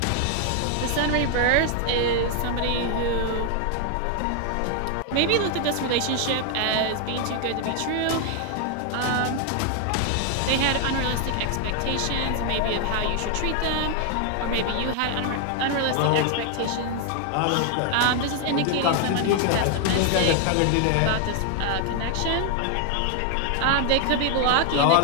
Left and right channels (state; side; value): different; both; correlation 0.00